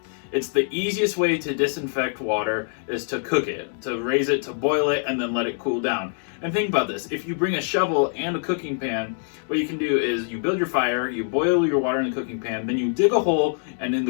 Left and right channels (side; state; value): right; silent; 62 dB below the other